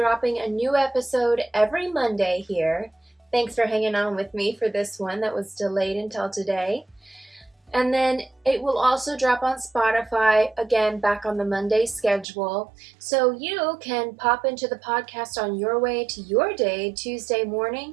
a new episode every Monday here. Thanks for hanging on with me for this one that was delayed until today. And then it will also drop on Spotify, again, back on the Monday schedule. So you can pop into the podcast on your way to your day, Tuesday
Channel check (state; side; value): drops out; left; at 12.2 s